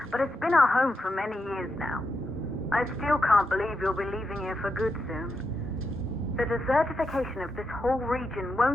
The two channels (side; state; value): both; normal; correlation 0.85